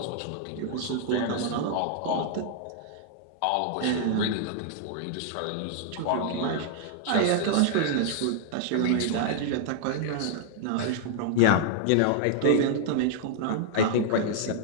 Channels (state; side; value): different; both; correlation -0.01